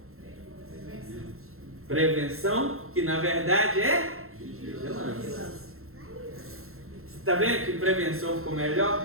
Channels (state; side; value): late; left; 0.62 ms